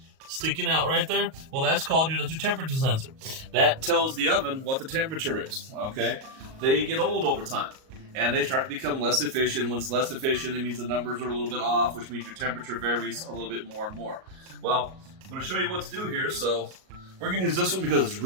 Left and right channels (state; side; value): late; left; 38 ms